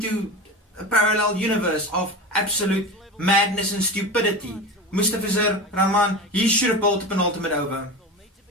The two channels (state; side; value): normal; both; correlation 0.28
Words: a parallel universe of absolute madness and stupidity. Mustafizur Rahman, he should have bowled a penultimate over.